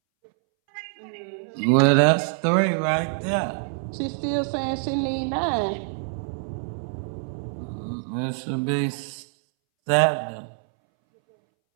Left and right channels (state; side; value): silent; left; 62 dB below the other